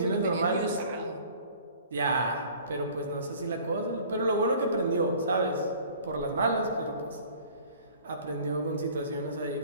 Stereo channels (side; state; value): both; inverted; correlation -0.49